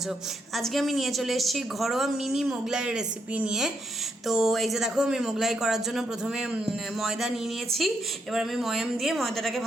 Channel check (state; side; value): normal; both; correlation 0.78